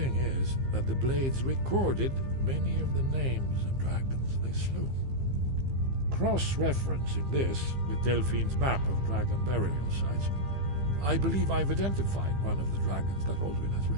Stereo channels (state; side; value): late; left; 15 ms